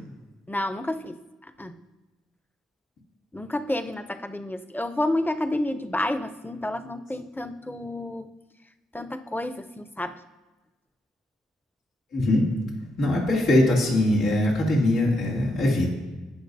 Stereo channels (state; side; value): normal; both; correlation 0.83